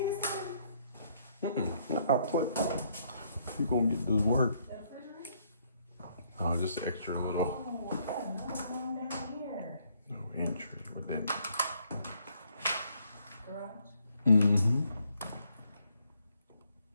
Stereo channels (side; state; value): both; inverted; correlation -0.69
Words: Nah, put. You gonna get this work? Oh, just extra little. No entry. What that? Mm-hmm.